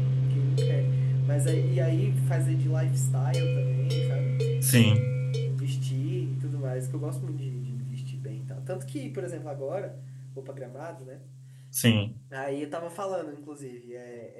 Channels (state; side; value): identical; both; correlation 1.00